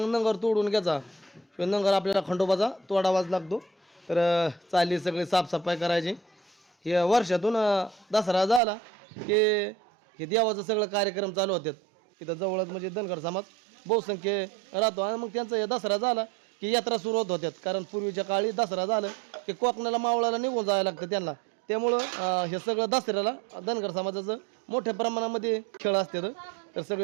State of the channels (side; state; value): left; drops out; at 8.6 s